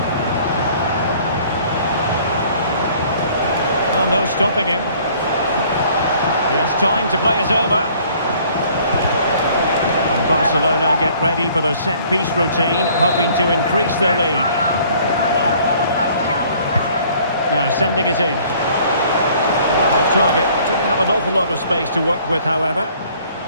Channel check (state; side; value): inverted; both; correlation -0.56